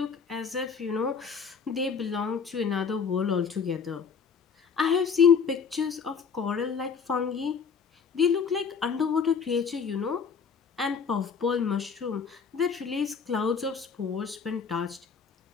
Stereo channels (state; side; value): quieter; right; 6.0 dB